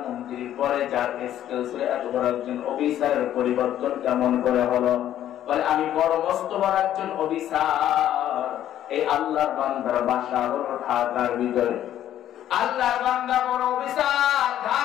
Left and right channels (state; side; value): quieter; right; 11.6 dB